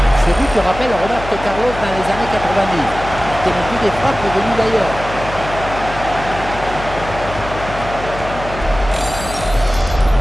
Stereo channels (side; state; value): left; noise; hum, 10 dB below the sound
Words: Ce but rappelle Roberto Carlos dans les années 90. C'était non plus des frappes venues d'ailleurs.